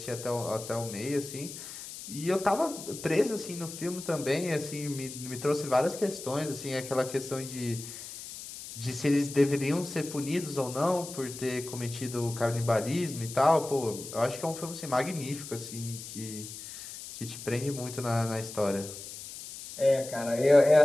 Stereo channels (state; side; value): noise; left; hiss, 11 dB below the sound